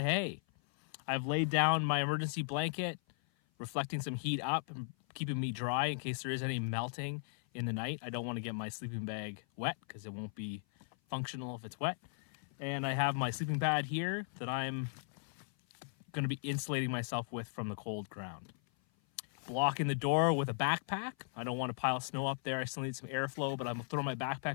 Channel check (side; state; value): right; silent; 53 dB below the other